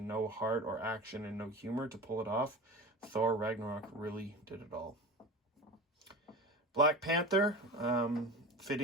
no heart, or action and no humor to pull it off. Thor Ragnarok really did it all. Black Panther,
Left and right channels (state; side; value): normal; both; correlation 0.31